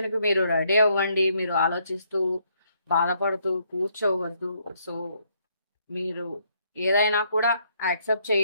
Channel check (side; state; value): both; inverted; correlation -0.71